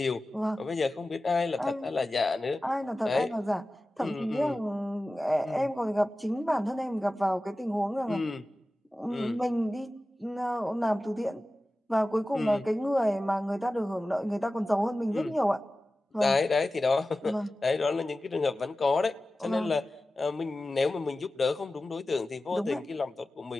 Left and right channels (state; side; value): normal; both; correlation 0.95